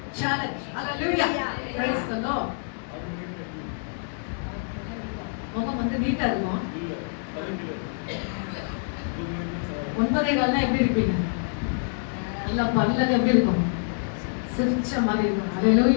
Challenge. Hallelujah. Praise the Lord. முகம் வந்து நீட்டா இருக்கும். 9:15 எப்படி இருப்பீங்க? நல்லா பல்லெல்லாம் எப்படி இருக்கும்? சிரிச்ச மாதிரி இருக்கும்.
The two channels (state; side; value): silent; right; 61 dB below the other